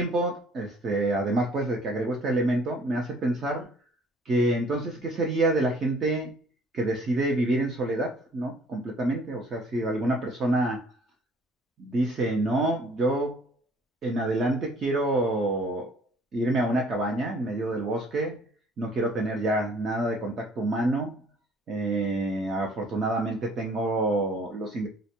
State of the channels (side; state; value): both; normal; correlation 0.56